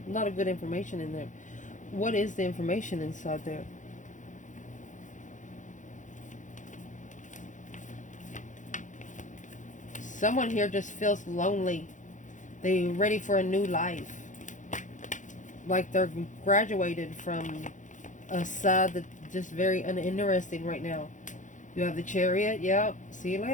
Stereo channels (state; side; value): late; right; 0.36 ms